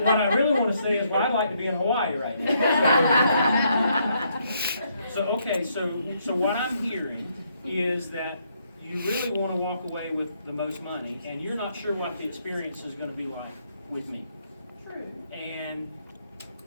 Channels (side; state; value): both; inverted; correlation -0.73